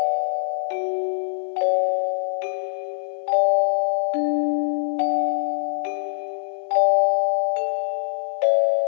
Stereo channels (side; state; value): right; silent; 63 dB below the other